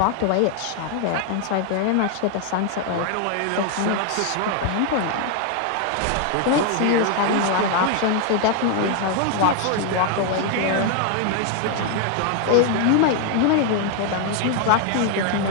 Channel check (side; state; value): both; different; correlation 0.00